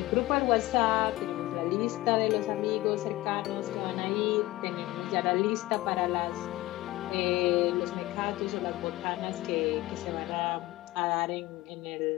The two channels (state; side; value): quieter; right; 18.1 dB